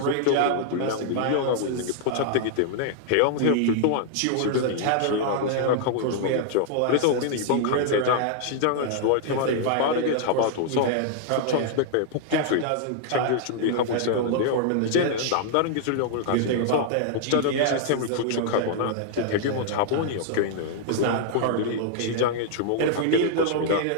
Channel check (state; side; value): different; both; correlation -0.01